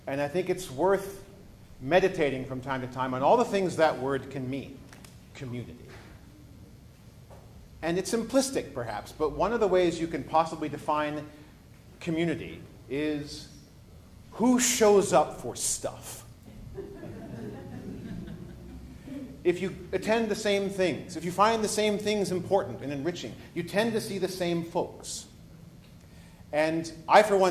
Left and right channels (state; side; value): identical; both; correlation 1.00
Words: And I think it's worth meditating from time to time on all the things that word can mean. Community. And it's simplistic, perhaps, but one of the ways you can possibly define community is who shows up for stuff. If you attend the same things, if you find the same things important and enriching, you tend to see the same folks. And I, for